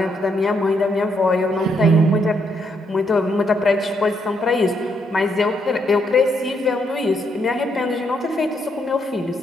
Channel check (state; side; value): normal; both; correlation 0.75